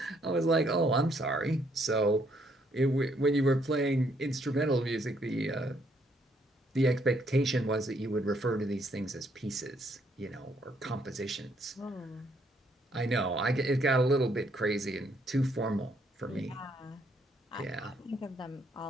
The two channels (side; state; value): both; normal; correlation 0.70